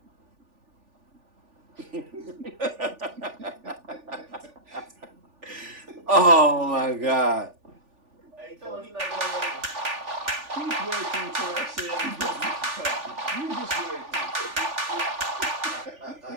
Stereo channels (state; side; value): late; left; 3.4 ms